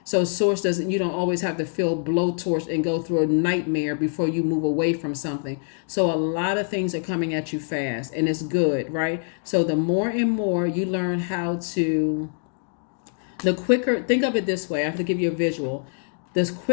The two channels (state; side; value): silent; right; 62 dB below the other